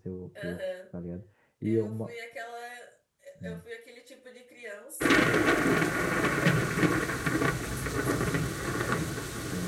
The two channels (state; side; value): identical; both; correlation 1.00